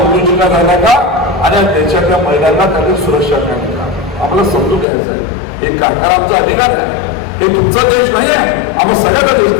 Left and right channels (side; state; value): right; drops out; at 4.9 s